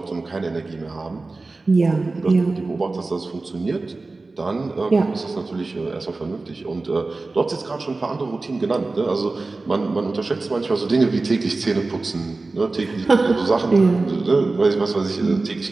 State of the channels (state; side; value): quieter; left; 3.5 dB